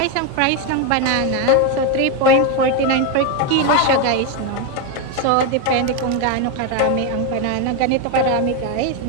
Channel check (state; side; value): different; both; correlation 0.02